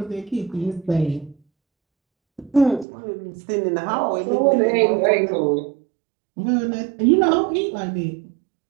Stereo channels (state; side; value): drops out; left; at 2.9 s